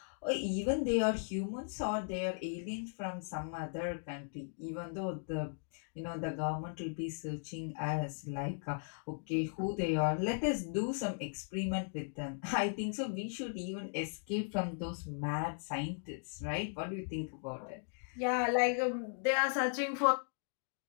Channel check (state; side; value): silent; right; digital silence